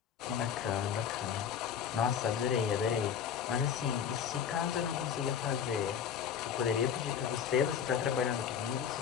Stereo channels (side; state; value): right; quieter; 8.1 dB